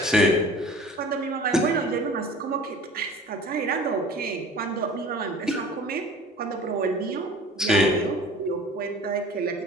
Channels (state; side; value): normal; both; correlation 0.44